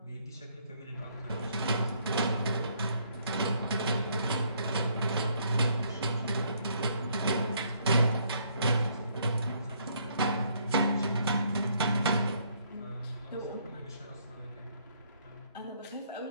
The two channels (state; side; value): inverted; both; correlation -0.68